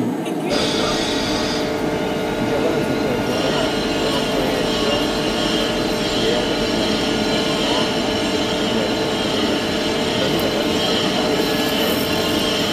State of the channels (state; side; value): identical; both; correlation 1.00